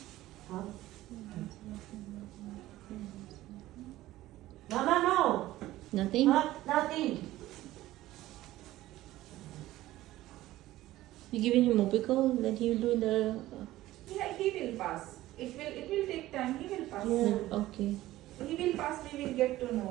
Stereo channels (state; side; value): quieter; left; 15.8 dB